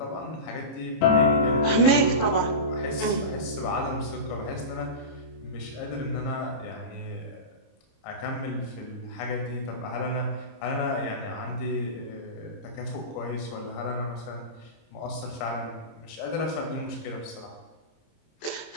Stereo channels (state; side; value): late; right; 26 ms